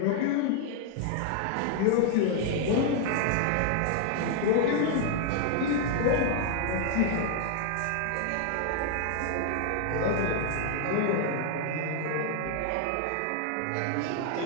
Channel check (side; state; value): both; different; correlation 0.00